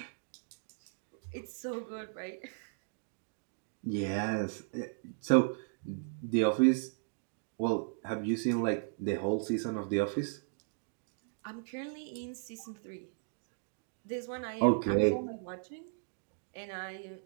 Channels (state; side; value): silent; left; digital silence